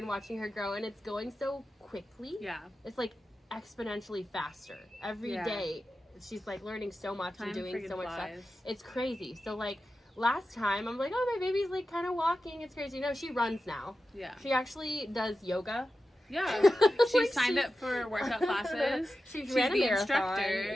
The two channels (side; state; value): both; normal; correlation 0.92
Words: watching her grow, and it's going so quickly. Yeah. It's like exponentially faster. Every day she's like learning so much and doing so much stuff. It's crazy. So like last time I'm like, oh, my baby's like kind of walking. It's crazy. No, she runs now. Yeah. She actually does yoga. Yeah. She signed up for workout classes. She's the instructor.